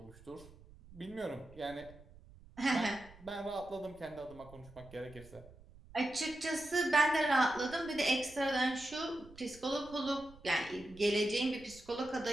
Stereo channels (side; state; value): right; noise; rumble, 21 dB below the sound